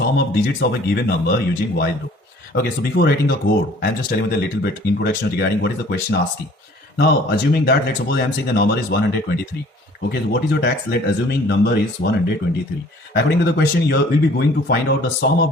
of digits of a given number using while loop. Okay, so before writing the code, I am just telling you a little bit introduction regarding what is the question asking. Now, assuming that, let's suppose I am saying the number is 123. Okay, so what is your tax? Let assuming number is 123. According to the question, you will be going to find out the sum of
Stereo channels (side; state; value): both; normal; correlation 0.53